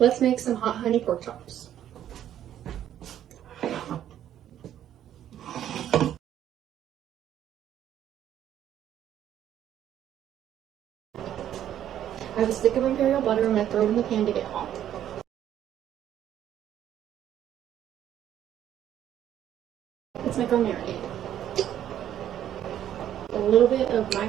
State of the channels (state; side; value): quieter; left; 10.9 dB